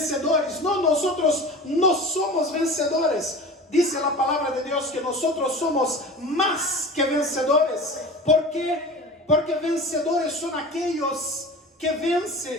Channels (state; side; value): normal; both; correlation 0.35